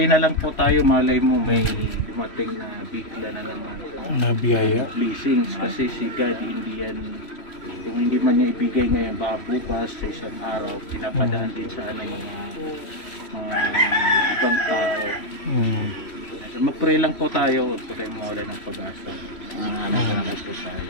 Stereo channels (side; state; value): right; late; 3.1 ms